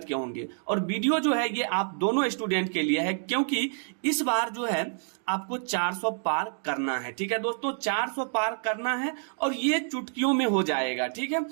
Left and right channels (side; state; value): left; silent; digital silence